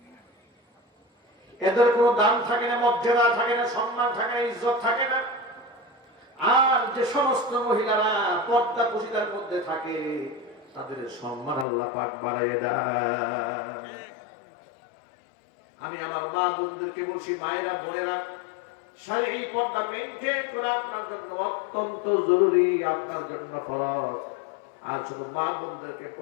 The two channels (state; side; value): drops out; right; at 11.7 s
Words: এদের কোনো দাম থাকে না, মর্যাদা থাকে না, সম্মান থাকে না, ইজ্জত থাকে না। আর যে সমস্ত মহিলারা পর্দা পশিদার মধ্যে থাকে, তাদের সম্মান আল্লাহ পাক বাড়াইয়ে দেয়। আমি আমার মা বোনদেরকে বলছি, মায়েরা বোনেরা, শারীরিক পর্দা মেইনটেইন করা আপনার জন্য অত্যন্ত জরুরি, আপনার জন্য ফরজ। আর শুধু মা বোনদেরকে